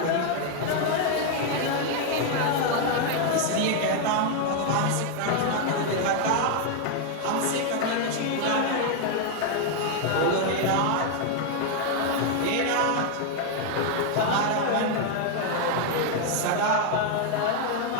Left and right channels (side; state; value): both; different; correlation 0.01